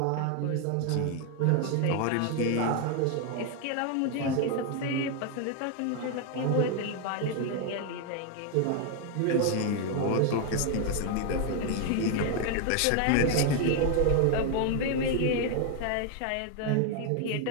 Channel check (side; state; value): both; different; correlation 0.01